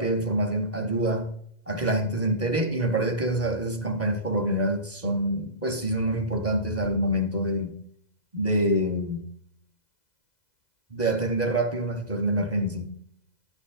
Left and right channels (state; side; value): late; right; 2.0 ms